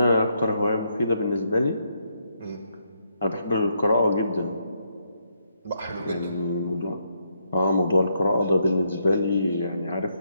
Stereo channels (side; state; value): both; inverted; correlation -0.77